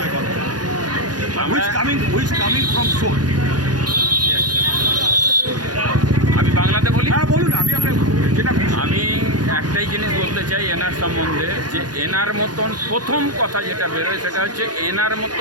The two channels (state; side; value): late; left; 0.69 ms